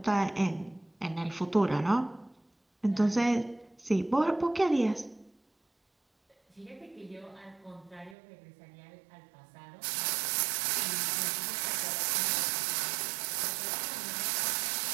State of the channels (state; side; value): drops out; left; at 8.2 s